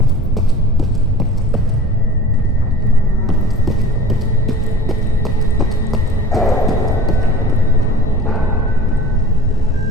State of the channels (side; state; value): both; normal; correlation 0.41